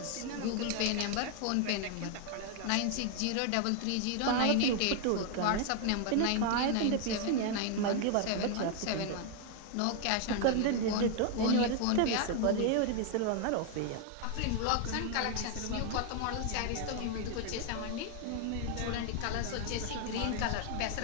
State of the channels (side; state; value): both; different; correlation 0.00